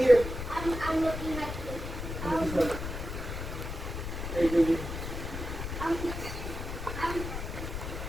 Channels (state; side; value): noise; left; rumble, 6 dB below the sound